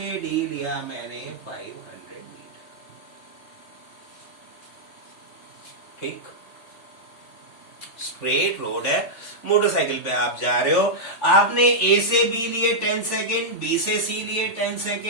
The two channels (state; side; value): late; right; 3.2 ms